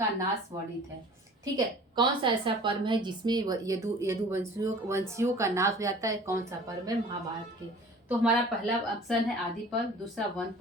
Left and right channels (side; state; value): both; normal; correlation 0.46